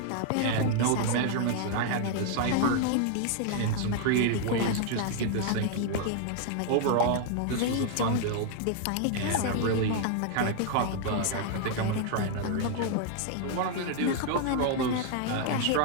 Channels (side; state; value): both; different; correlation 0.00